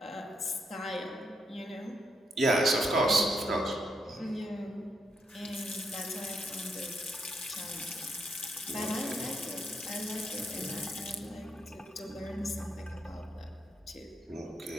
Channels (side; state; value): both; normal; correlation 0.79